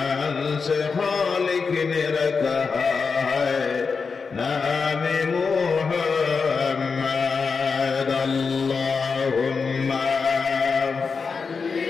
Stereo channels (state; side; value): quieter; right; 5.1 dB